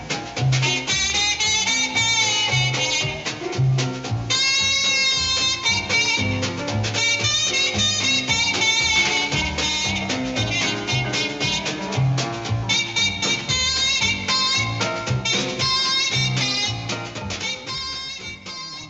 Was the first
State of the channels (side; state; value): both; identical; correlation 1.00